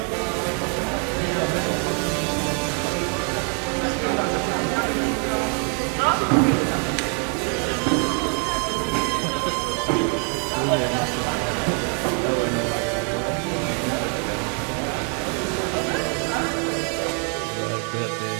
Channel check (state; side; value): quieter; left; 38.8 dB